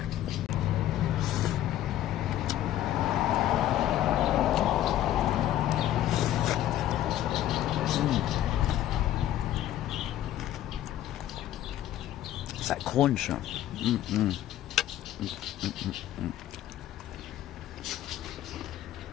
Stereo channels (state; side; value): quieter; right; 12.8 dB